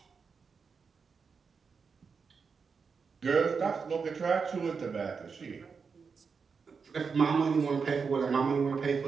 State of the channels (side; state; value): left; quieter; 5.5 dB